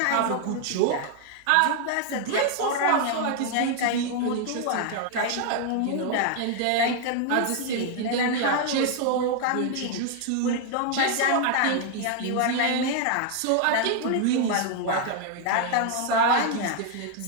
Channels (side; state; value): both; different; correlation 0.00